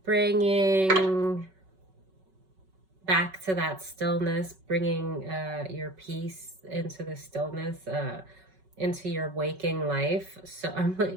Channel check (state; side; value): late; left; 5.3 ms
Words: Bringing back to that stillness, bringing your peace into the stillness, into your waking life. So I'm